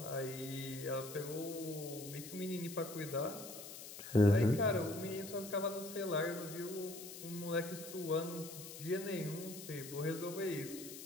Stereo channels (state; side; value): noise; left; hiss, 11 dB below the sound